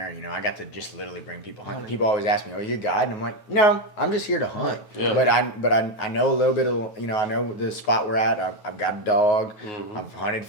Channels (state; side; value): late; right; 9.4 ms